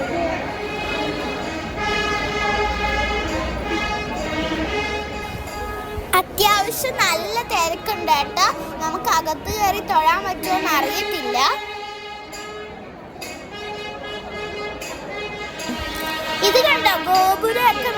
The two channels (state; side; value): identical; both; correlation 1.00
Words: അത്യാവശ്യം നല്ല തിരക്കുണ്ട് കേട്ടോ. നമുക്ക് അകത്ത് കയറി തൊഴാൻ പറ്റുമോന്ന് അറിയത്തില്ല. ഇത് കണ്ടോ, ഗോപുരമൊക്കെ